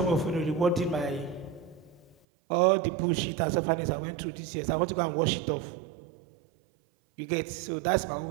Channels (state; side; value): drops out; left; at 2.1 s